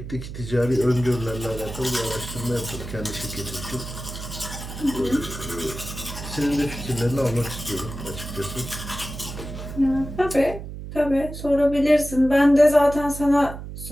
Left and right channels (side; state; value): right; noise; hum, 10 dB below the sound